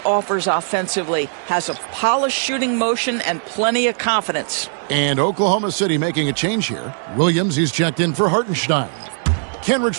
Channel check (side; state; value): left; silent; 65 dB below the other